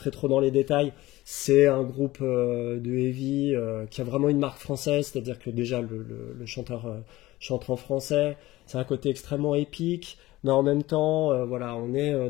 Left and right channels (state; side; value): quieter; right; 17.9 dB